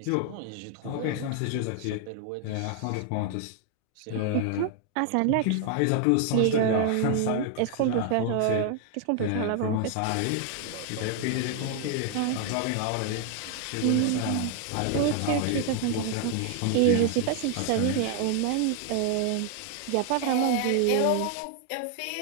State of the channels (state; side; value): different; both; correlation 0.00